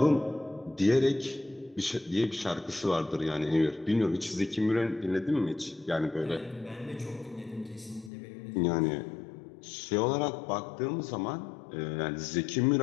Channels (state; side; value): drops out; right; at 8.1 s